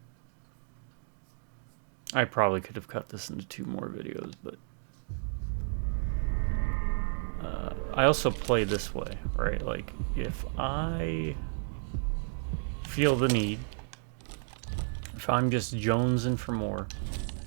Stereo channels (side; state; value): left; silent; 56 dB below the other